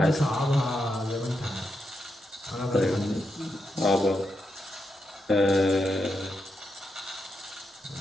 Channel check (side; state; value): both; normal; correlation 0.84